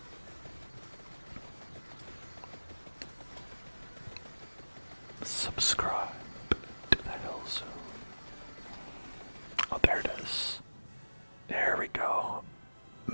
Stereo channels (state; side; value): inverted; both; correlation -1.00